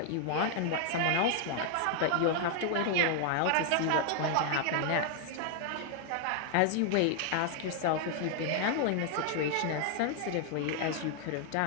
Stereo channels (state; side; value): different; both; correlation 0.00